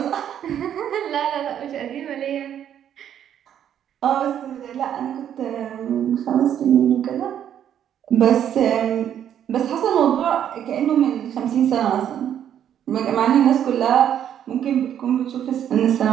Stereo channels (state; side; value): quieter; left; 9.8 dB